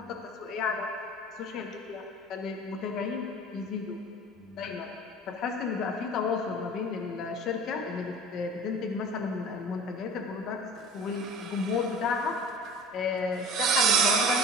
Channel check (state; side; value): normal; both; correlation 0.40